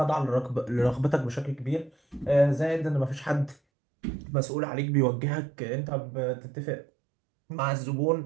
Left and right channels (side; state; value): left; drops out; at 3.6 s